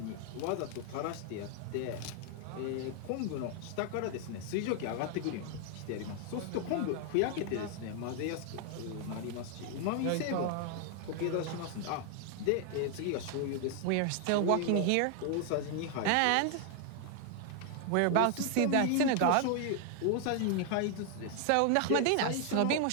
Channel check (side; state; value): both; different; correlation 0.00